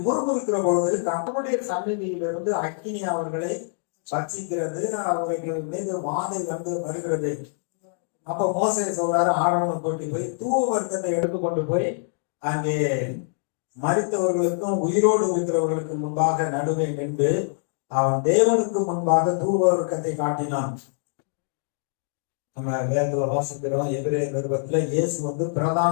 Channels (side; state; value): right; silent; digital silence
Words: முறுமுறுக்கிற பொழுது கர்த்தருடைய சந்நிதியிலிருந்து அக்கினி அவர்களை பட்சிக்கிறது. அவர்கள் மீது வாதை வருகிறது. அப்ப மோசே சொல்றாரு, ஆரோனை கூட்டி போய் தூவ வர்க்கத்தை எடுத்துக்கொண்டு போய் அங்கே மரித்தவர்களுக்கும் உயிரோடு இருக்கிறவர்களுக்கு முன்பாக நடுவே நின்று அவன் தேவனுக்கு முன்பாக தூவ வர்க்கத்தை காட்டினான். நம்ம வேதத்துல வாசிக்கிறோம், எபிரேயர் நிருபத்துல இயேசு பிரதான